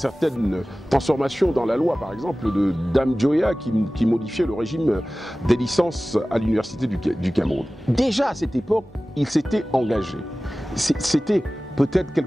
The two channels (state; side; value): normal; both; correlation 0.97